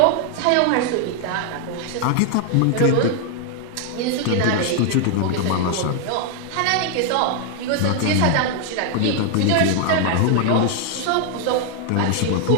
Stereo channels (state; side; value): different; both; correlation 0.00